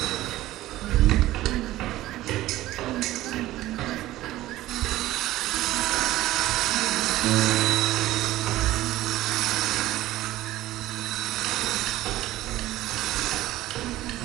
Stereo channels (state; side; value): quieter; left; 15.8 dB